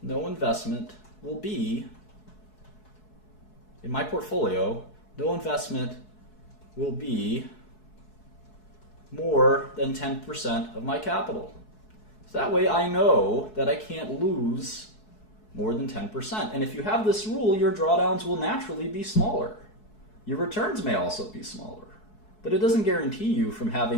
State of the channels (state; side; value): late; right; 4.7 ms